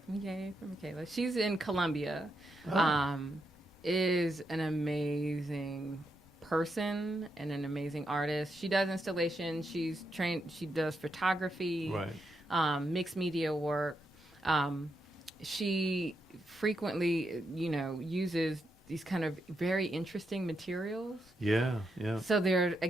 Yay for Michaela. She's in Columbia. Oh. Is an amazing person and an amazing artist. She does installation. She's trained. She does photography. Right. Mixed media work. She frequently, uses these kind of very interesting materials. Yeah, yeah. So there,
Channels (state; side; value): normal; both; correlation 0.82